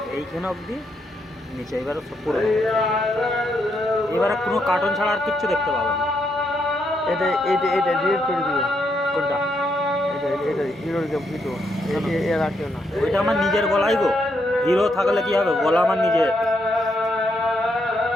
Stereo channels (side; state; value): both; normal; correlation 0.78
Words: এইখানে অবধি নিচে, এবারে সব পুরো, এবারে কোনো কার্টুন ছাড়া আর কিচ্ছু দেখতে পাবে না। এটা ডিলিট করে দিও। কোনটা? এটা হিরোর ভিডিও এ রাখিও না। ওইটা আমার নিজের গলাই গো, হিরো থাকলে কি হবে, গলা আমার নিজের,